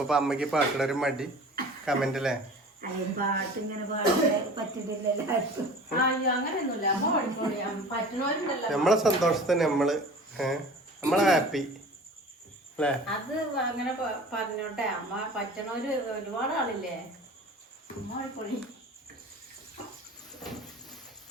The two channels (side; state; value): both; normal; correlation 0.41